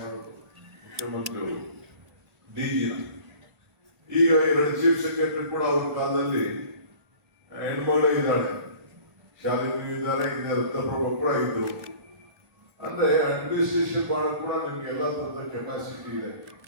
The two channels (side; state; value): left; late; 1.8 ms